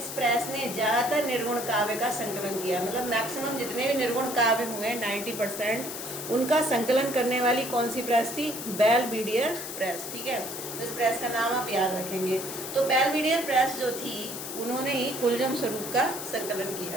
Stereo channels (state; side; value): noise; left; hiss, 8 dB below the sound